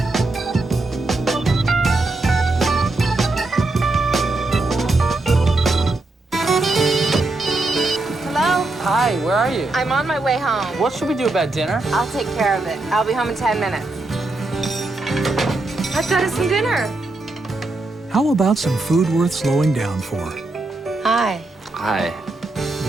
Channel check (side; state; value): left; quieter; 3.0 dB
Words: Hi, where are you? I'm on my way home. What should we do about dinner? I'll take care of it. I'll be home in 10 minutes. I've got us some dinner. How about some food worth slowing down for? Hi. Hi.